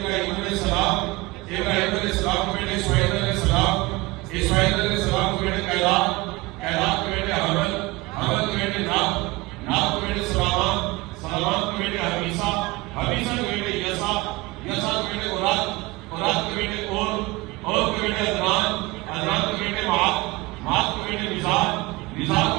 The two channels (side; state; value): left; quieter; 21.9 dB